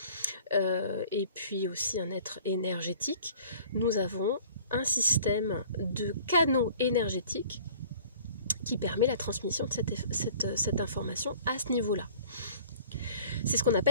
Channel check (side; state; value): both; inverted; correlation -0.50